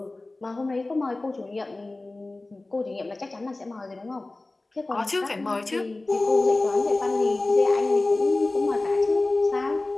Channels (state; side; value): quieter; right; 3.0 dB